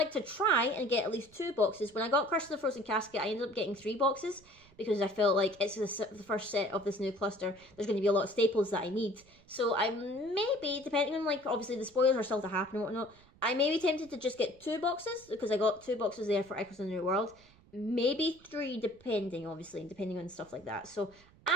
to try and get at least 2 boxes. When I got Curse of the Frozen Casket, I ended up getting 3 boxes, because I felt like it's the first set of this new cluster. There's going to be a lot of staples that I need. So I maybe, depending on, like, obviously the spoilers are still to happen and whatnot, I may be tempted to just get 2 boxes, because I got 2 boxes there for Echoes in the New World. Maybe 3, depending on stuff like that. So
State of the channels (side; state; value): right; noise; rumble, 27 dB below the sound